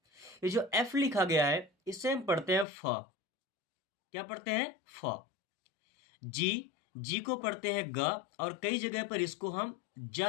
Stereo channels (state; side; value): drops out; right; at 2.7 s